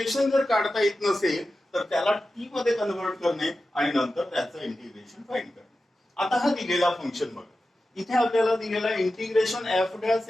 जर काढता येत नसेल तर त्याला टी मध्ये कन्व्हर्ट करणे आणि नंतर त्याचं इंटिग्रेशन फाइंड करणे. आता हा दिलेला फंक्शन बघा, इथे आपल्याला दिलेला integration f dash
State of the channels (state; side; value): normal; both; correlation 0.93